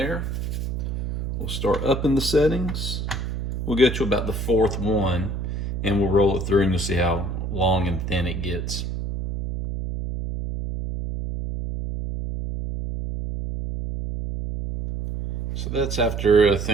we'll start upping the settings. We'll get to about the 4th one and we'll roll it through and you'll see how long and thin it gets. So that's after, I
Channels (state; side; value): noise; right; hum, 3 dB below the sound